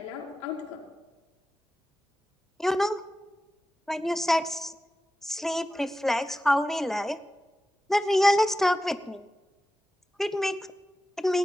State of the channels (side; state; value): both; normal; correlation 0.93